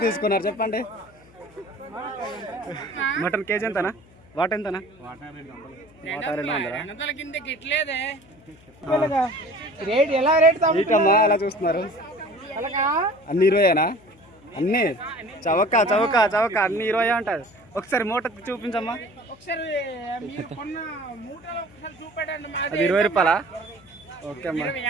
తీసుకున్నారు చెప్పండి. మటన్ కేజీ ఎంతనా? వాట ఎంతనా? వాట 200. కిందకి ఇట్లేదే రేట్ ఎలా రేట్ ఇటమ్మా అలా చూస్తున్నారు. అన్ని 20ఏనా? అన్ని చవక చవక చవక అన్ని 20 ఉంటుంది. ఒకసారి మూట చూపించమ్మా. అది 20 రూపాయలా? ఓకే అమ్మా.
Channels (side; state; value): left; noise; hum, 26 dB below the sound